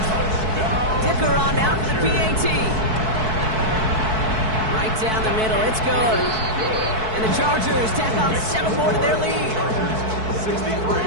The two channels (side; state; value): left; late; 4.6 ms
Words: Dicker on now for the PAT. Right down the middle, it's good. And the Chargers tack on 7 more to their lead. 63.